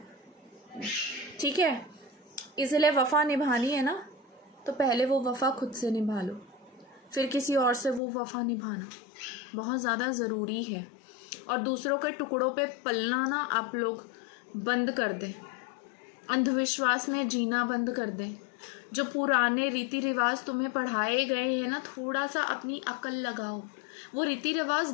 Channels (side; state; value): right; drops out; at 8.0 s